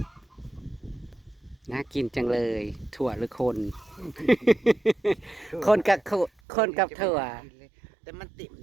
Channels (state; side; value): drops out; left; at 6.3 s